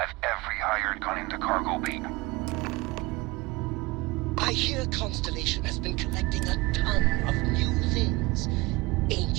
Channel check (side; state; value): left; quieter; 22.7 dB